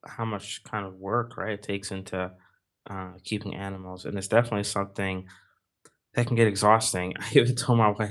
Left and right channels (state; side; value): identical; both; correlation 1.00